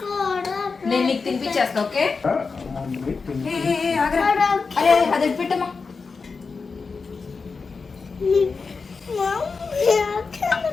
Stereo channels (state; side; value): quieter; right; 4.7 dB